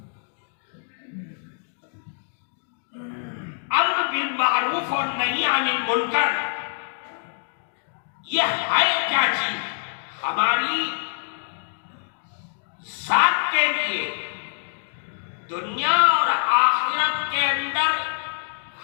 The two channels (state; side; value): silent; right; digital silence